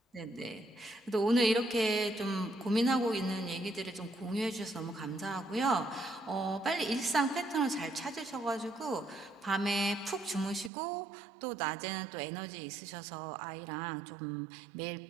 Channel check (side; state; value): left; drops out; at 10.7 s